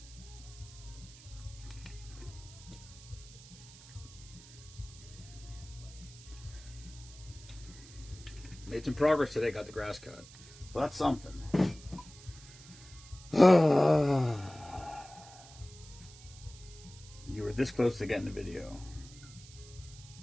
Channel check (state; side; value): noise; right; hiss, 19 dB below the sound